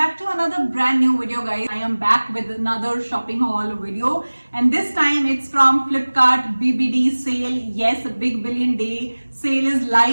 to another brand new video guys. I am back with another shopping haul video and this time it's from Flipkart BBD sale. Yes, a big billion day sale is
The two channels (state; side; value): inverted; both; correlation -1.00